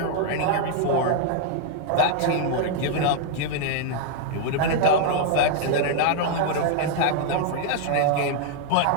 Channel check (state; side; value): different; both; correlation 0.00